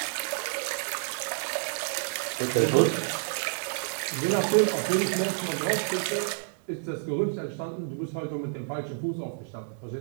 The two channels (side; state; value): left; silent; digital silence